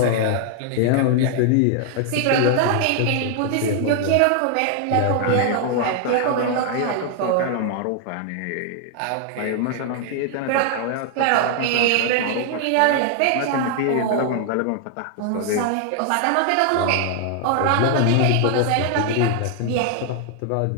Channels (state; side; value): different; both; correlation 0.00